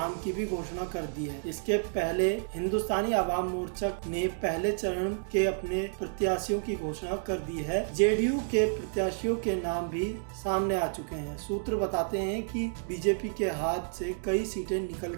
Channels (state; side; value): silent; left; digital silence